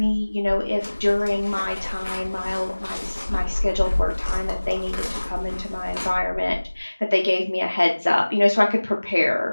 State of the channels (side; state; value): both; inverted; correlation -1.00